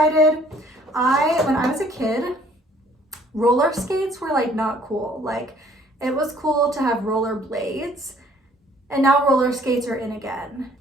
When I was a kid, roller skates were like not cool. Like, it was cool to have roller blades, and now roller skates are in again.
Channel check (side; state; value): both; normal; correlation 0.59